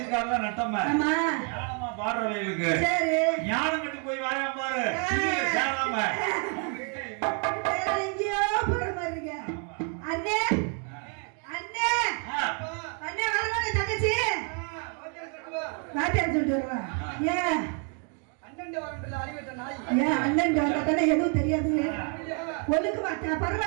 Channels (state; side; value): quieter; left; 39.9 dB